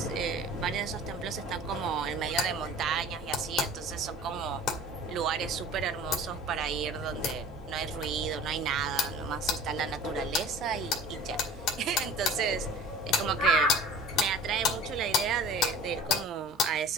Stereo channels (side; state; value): both; normal; correlation 0.44